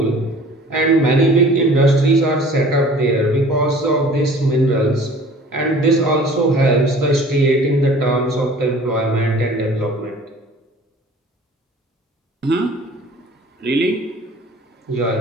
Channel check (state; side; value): normal; both; correlation 0.48